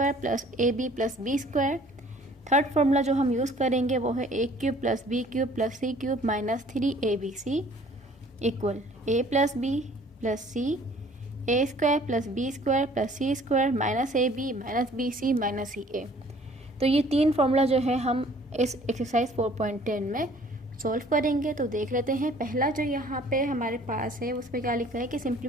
plus A B plus B square. Third formula जो हम use करेंगे वो है A cube plus B cube plus C cube minus 3abc equal A plus B plus C A square plus B square plus C square minus A B minus B C minus C A. तो ये तीन formula जो है हम इस exercise 4.10 में solve करेंगे। तो देख लेते हैं। पहला जो यहाँ पे हमारे पास है उस पर क्या लिखा है कि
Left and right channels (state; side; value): normal; both; correlation 0.54